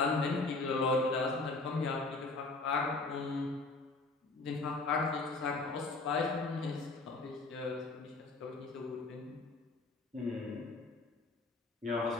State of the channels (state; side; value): quieter; right; 3.4 dB